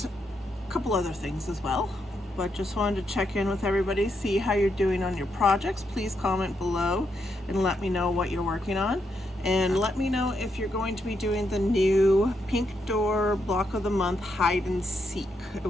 a couple other things as well, but just wanted to check in with everybody, see how you're doing on your projects. Please comment below and let me know what you're working on, and let me know if you're going to be doing the new Pink Door Block of the Month hide and seek. It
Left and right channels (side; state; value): both; normal; correlation 0.80